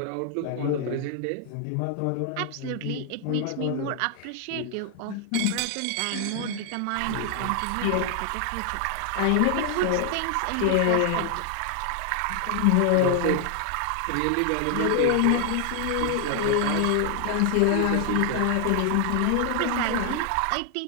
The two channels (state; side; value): different; both; correlation 0.00